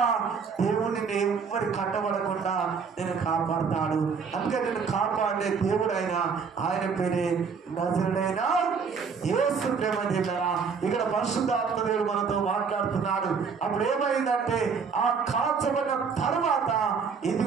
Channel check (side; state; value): left; quieter; 5.7 dB